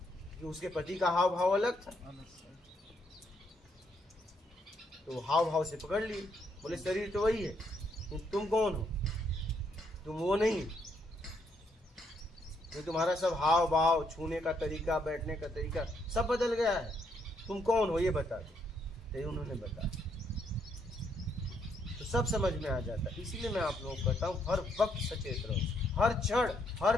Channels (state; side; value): normal; both; correlation 0.74